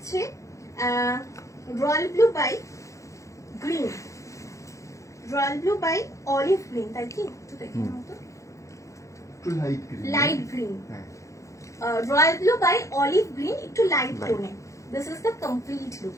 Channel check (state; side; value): late; right; 0.15 ms